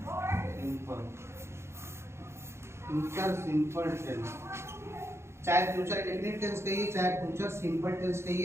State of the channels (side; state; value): left; late; 0.13 ms